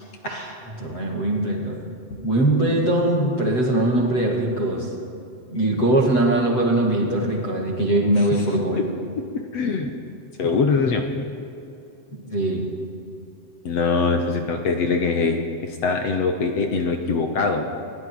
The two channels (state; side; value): late; right; 8.0 ms